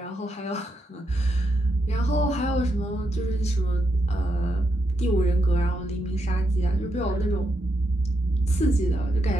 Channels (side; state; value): both; normal; correlation 0.82